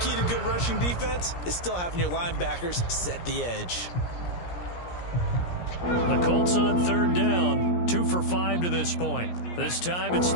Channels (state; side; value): late; right; 17 ms